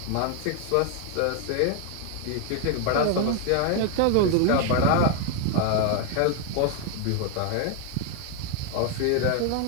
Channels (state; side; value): different; both; correlation 0.00